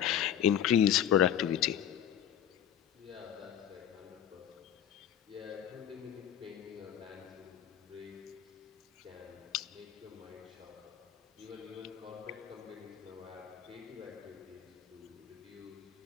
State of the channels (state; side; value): quieter; right; 9.9 dB